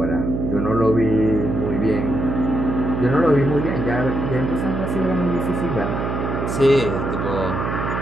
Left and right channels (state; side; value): noise; right; hum, 2 dB below the sound